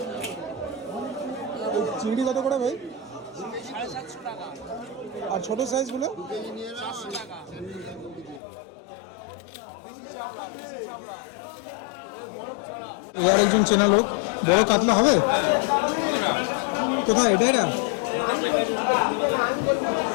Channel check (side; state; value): right; drops out; at 8.4 s